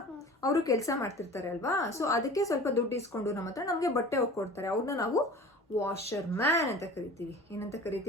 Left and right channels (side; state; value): both; normal; correlation 0.40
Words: ಅವರು ಕೆಲಸ ಮಾಡ್ತಿರ್ತಾರೆ ಅಲ್ವಾ? ಸೊ ಅದಕ್ಕೆ ಸ್ವಲ್ಪ ದುಡ್ಡು ಇಸ್ಕೊಂಡು ನಮ್ಮ ಹತ್ರ ನಮ್ಗೆ ಬಟ್ಟೆ ಹೋಗ್ಕೊಡ್ತಾರೆ. ಅವ್ರನ್ನ ನಾವು ವಾಷರ್ ಮ್ಯಾನ್ ಅಂತ ಕರಿತೀವಿ. ಏನಂತ